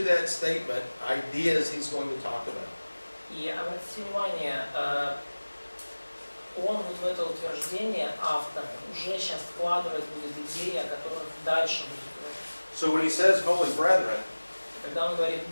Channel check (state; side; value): inverted; both; correlation -1.00